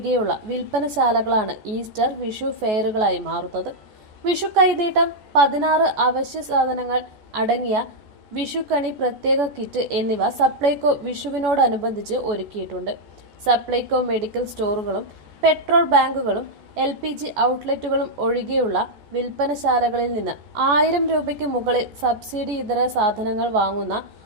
വിൽപ്പനശാലകളാണ് ഈസ്റ്റർ വിഷു ഫെയറുകളായി മാറുന്നത്. വിഷു കൈനീട്ടം, 16 അവശ്യ സാധനങ്ങൾ അടങ്ങിയ വിഷുക്കണി പ്രത്യേക കിറ്റ് എന്നിവ സപ്ലൈകോ വിഷുവിനോടനുബന്ധിച്ച് ഒരുക്കിയിട്ടുണ്ട്. സപ്ലൈകോ മെഡിക്കൽ സ്റ്റോറുകളും പെട്രോൾ ബാങ്കുകളും LPG ഔട്ട്ലെറ്റുകളും ഒഴികെയുള്ള വിൽപ്പനശാലകളിൽ നിന്ന് 1000 രൂപയ്ക്ക് മുകളിൽ സബ്സിഡി ഇതര സാധനങ്ങൾ വാങ്ങുന്ന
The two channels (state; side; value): late; left; 14 ms